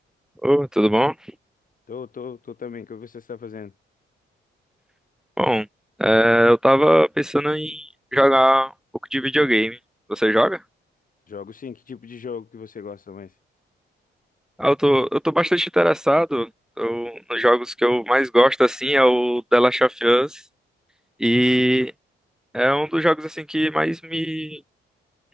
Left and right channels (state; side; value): normal; both; correlation 0.98